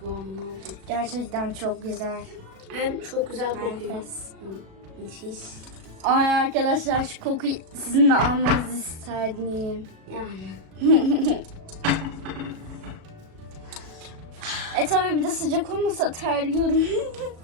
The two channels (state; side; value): late; left; 37 ms